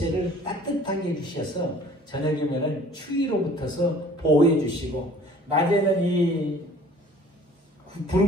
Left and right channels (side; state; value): both; normal; correlation 0.51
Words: 따뜻하게 해주셔서 저녁이면은 추위로부터서 보호해 주시고, 낮에는 이